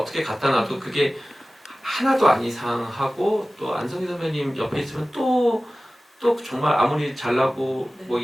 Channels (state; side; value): normal; both; correlation 0.96